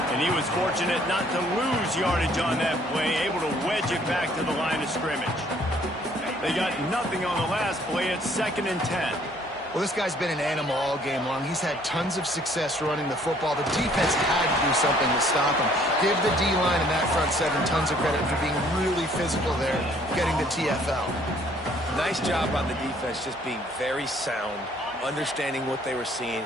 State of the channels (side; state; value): both; normal; correlation 0.61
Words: And he was fortunate not to lose yardage on that play, able to wedge it back to the line of scrimmage. They got nothing on the last play. It's 2nd and 10. Well, this guy's been an animal all game long. He's had tons of success running the football. The defense had to do something to stop him. Give the D-line and that front seven tons of credit for being really physical there, getting the TFL. Nice job on the defense, just being very sound, understanding what they were seeing,